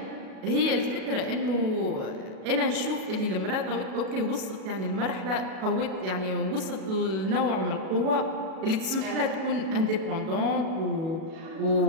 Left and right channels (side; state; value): left; late; 37 ms